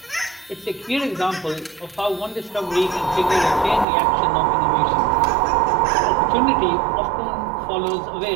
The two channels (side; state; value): left; drops out; at 3.9 s